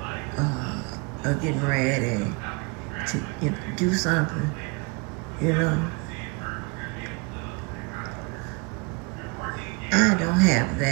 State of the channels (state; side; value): quieter; left; 29.2 dB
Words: are getting ready to do something, I don't have